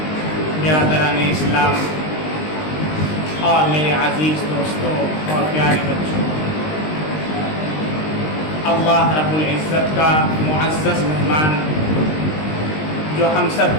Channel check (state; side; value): late; right; 19 ms